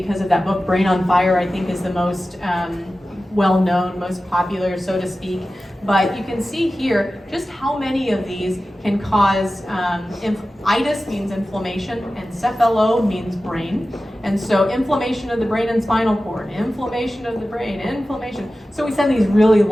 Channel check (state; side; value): normal; both; correlation 0.95